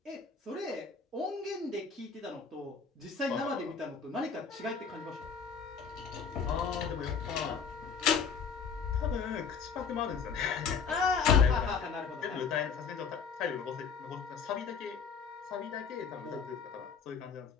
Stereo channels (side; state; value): right; quieter; 5.9 dB